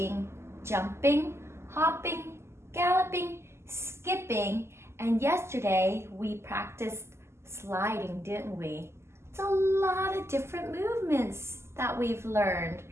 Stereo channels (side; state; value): left; late; 0.13 ms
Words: jumping, hopping, galloping, skipping, and yesterday we practiced sliding, didn't we? It's a lot of different movements that we've learned.